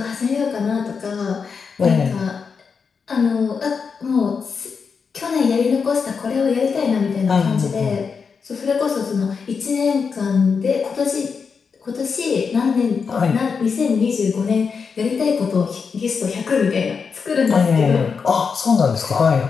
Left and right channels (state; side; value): quieter; right; 5.6 dB